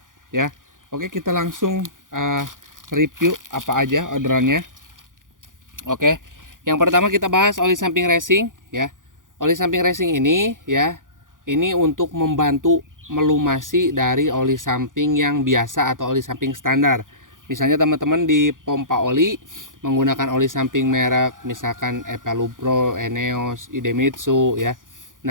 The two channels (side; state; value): left; late; 0.89 ms